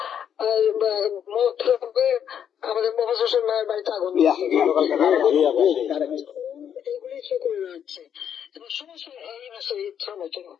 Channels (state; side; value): quieter; right; 8.8 dB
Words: আমাদের মোহাম্মদ হোসেন মায়ের বাড়িতে আগুন, এইগুলি সে করে যাচ্ছে এবং সমস্ত এই বিষয়ে ইচ্ছা মতো।